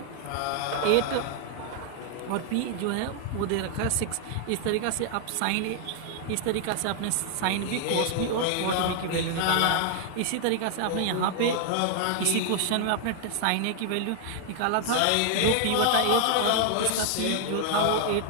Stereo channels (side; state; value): both; different; correlation 0.00